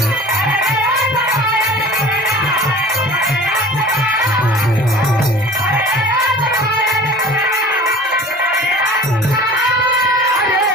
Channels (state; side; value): normal; both; correlation 0.42